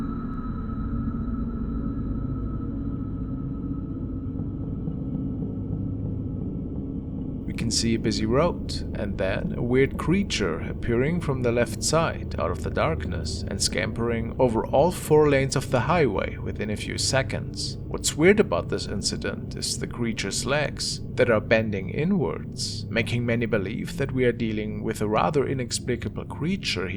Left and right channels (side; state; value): both; identical; correlation 1.00